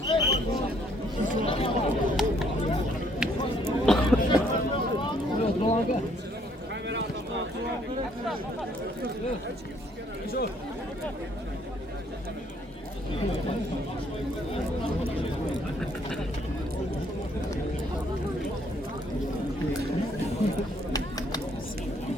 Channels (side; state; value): both; normal; correlation 0.65